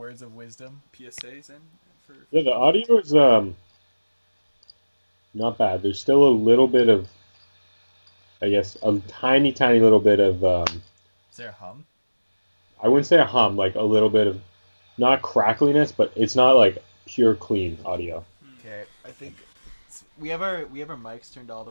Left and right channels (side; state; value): both; inverted; correlation -1.00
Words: of wisdom? PSAs in for Yeah, the audio is not bad. There's still a little bit of, I guess, a tiny little bit of Is there a hum? I wouldn't say a hum, like a little bit of, not crackliness, but it's not like pure clean audio. Okay, I think we have our mics turned all the